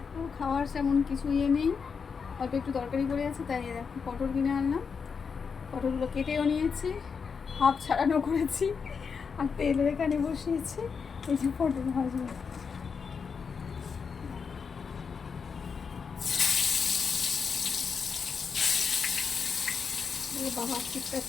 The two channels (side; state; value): right; quieter; 5.8 dB